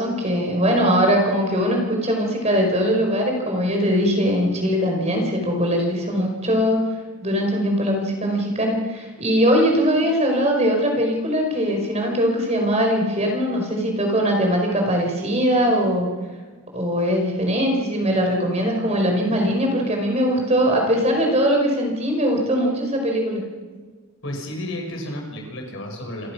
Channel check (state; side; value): normal; both; correlation 0.35